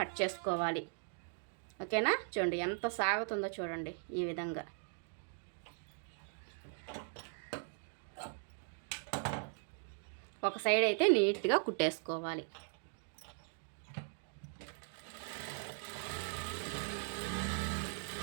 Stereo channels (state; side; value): silent; left; 52 dB below the other